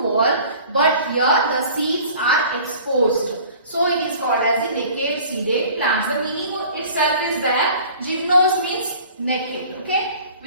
wall, but here the seeds are exposed. So it is called as the naked seeded plants. The meaning itself is that gymnos means naked, okay,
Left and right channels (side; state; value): both; inverted; correlation -0.47